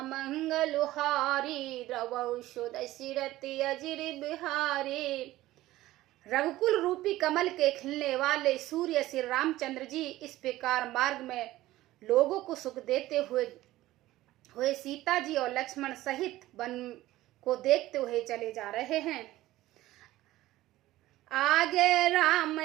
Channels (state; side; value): quieter; left; 16.2 dB